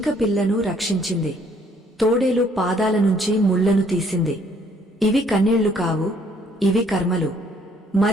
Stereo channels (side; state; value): both; normal; correlation 0.64